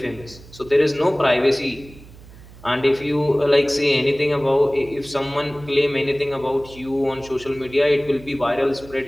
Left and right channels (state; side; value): noise; right; hum, 20 dB below the sound